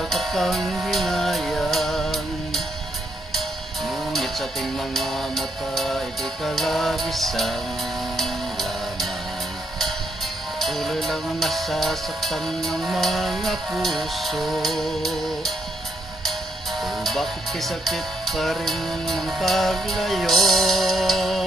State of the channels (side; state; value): both; normal; correlation 0.76